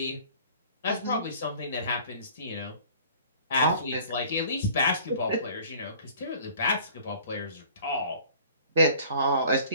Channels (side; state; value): both; inverted; correlation -0.50